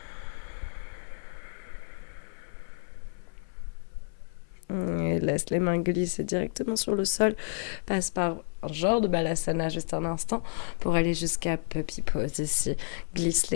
Et laisse les mains glisser directement sur le sol. Passe par un genre de balasana juste un instant pour aller jusqu'à puppy pose ici. Glisse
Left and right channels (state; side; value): silent; right; 58 dB below the other